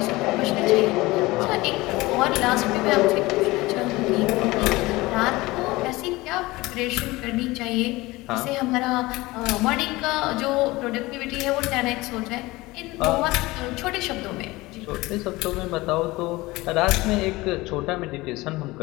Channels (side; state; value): right; quieter; 20.6 dB